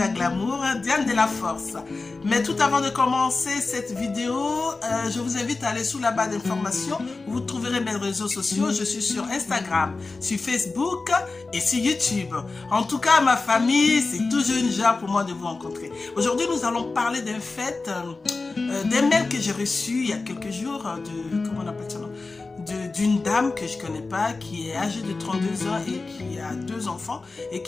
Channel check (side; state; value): right; quieter; 3.7 dB